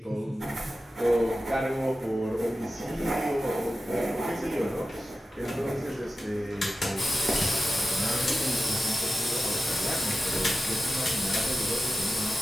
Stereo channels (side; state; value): both; normal; correlation 0.93